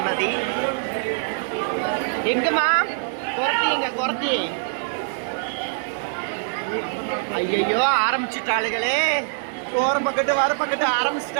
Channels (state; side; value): silent; left; digital silence